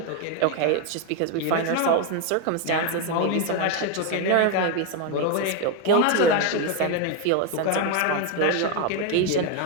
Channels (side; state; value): both; different; correlation 0.02